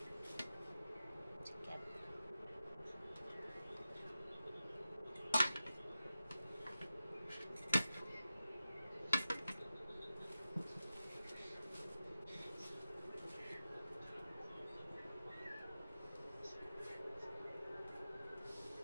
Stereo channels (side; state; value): both; inverted; correlation -0.92